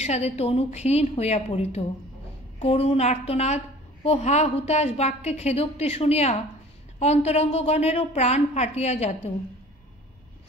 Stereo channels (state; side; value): normal; both; correlation 0.47